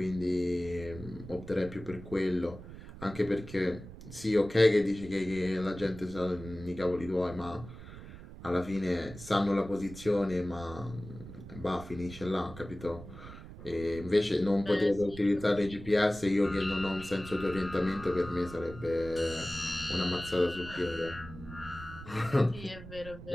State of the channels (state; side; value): noise; right; rumble, 14 dB below the sound